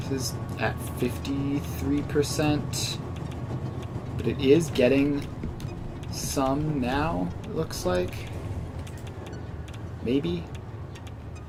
is at 53%, but it is getting some now, it looks like. Maybe?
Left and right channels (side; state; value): both; identical; correlation 1.00